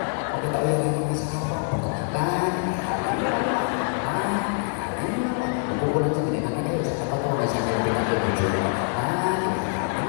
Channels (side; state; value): right; silent; 62 dB below the other